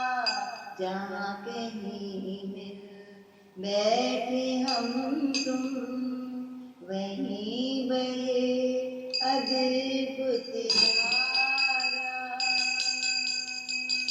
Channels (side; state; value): both; identical; correlation 1.00